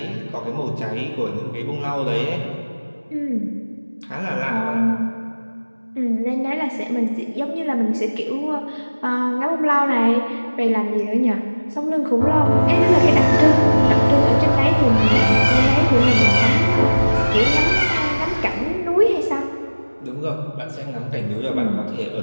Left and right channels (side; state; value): both; inverted; correlation -1.00